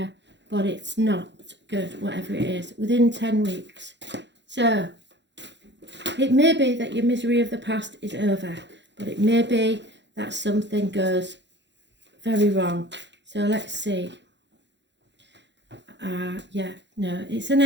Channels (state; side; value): late; left; 0.52 ms